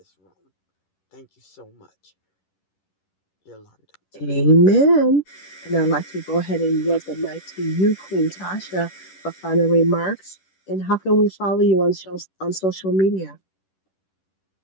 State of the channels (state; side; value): late; right; 11 ms